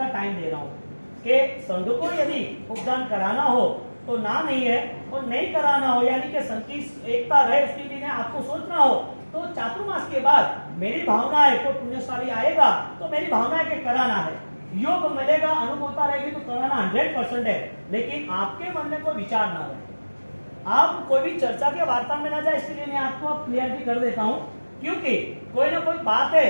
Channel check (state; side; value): inverted; both; correlation -1.00